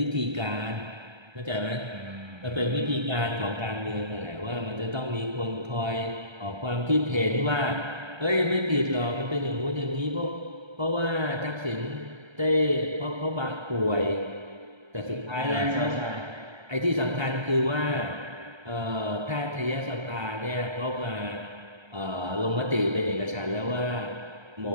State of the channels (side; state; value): left; late; 1.3 ms